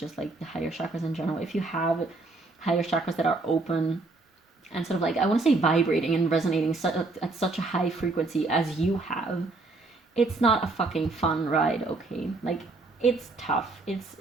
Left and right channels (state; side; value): quieter; left; 3.4 dB